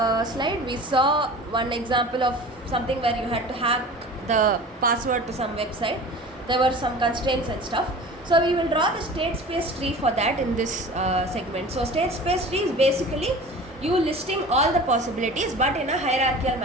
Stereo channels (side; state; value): both; normal; correlation 0.39